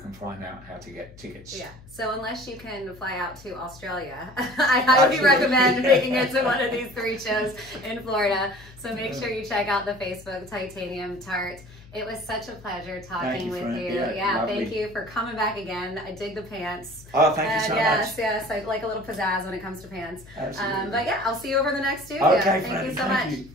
find out how to get tickets. Yeah. So unless you can fly out to Australia, I highly recommend making it to one of these 3 shows in Florida. So make sure you check out the Facebook Titanium Tart. It was such a pleasure talking with you. Yeah, thank you for coming back again. I dig the pants. Oh, thank you so much. Yes, I like a little pizzazz when it comes to pants. Absolutely. But yeah, I'll see you over the next studio. Okay, thank you so much.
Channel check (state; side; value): noise; left; hum, 21 dB below the sound